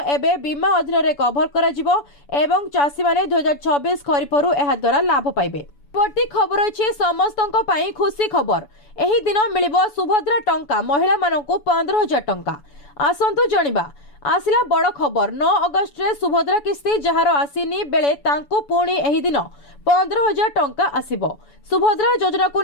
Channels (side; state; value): right; late; 7.0 ms